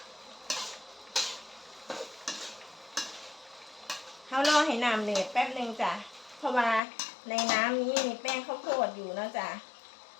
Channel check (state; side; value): drops out; right; at 6.8 s